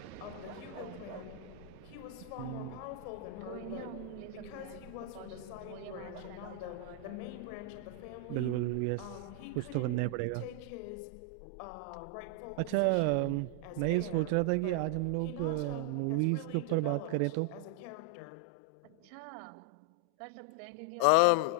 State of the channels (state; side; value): different; both; correlation 0.00